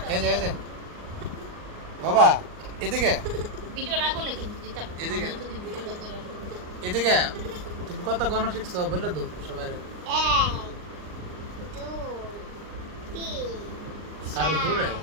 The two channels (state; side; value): late; left; 39 ms